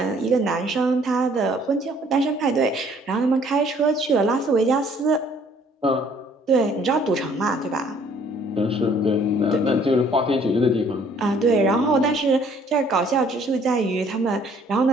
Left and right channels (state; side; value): normal; both; correlation 0.59